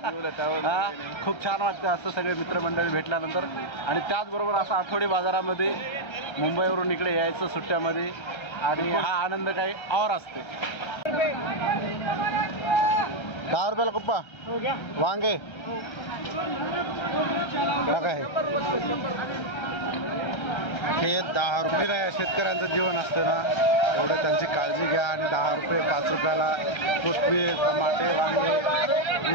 खूप छान वाटतं असं सगळे मित्रमंडळी भेटल्यानंतर. आणि त्याचबरोबर असं आठवडी बाजारामध्ये मुंबईवरून इकडे यायचं सुट्ट्यामध्ये आणि हा आनंद काही और असते. 10 रुपयाला कुप्पा वांगे काय हे 10 रुपये नाही. शेतकऱ्यांचं जीवन असतं ना, एवढं त्यांची काळजी घ्या. आणि 10 रुपये 5 रुपयाला कोथिंबीर, टमाटे, वांगे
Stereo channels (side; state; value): right; late; 1.3 ms